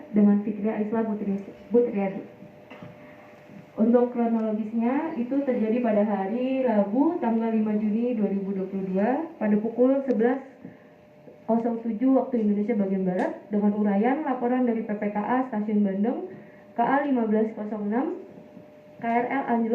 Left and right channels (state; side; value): identical; both; correlation 1.00